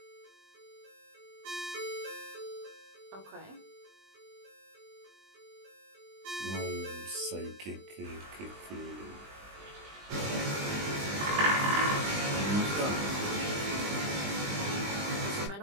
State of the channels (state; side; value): late; left; 20 ms